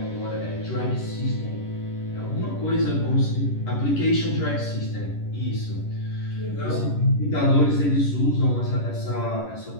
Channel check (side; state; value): right; late; 11 ms